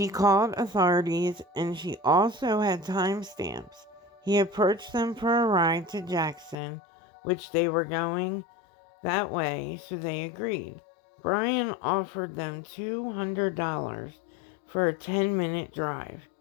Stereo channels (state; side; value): drops out; right; at 6.6 s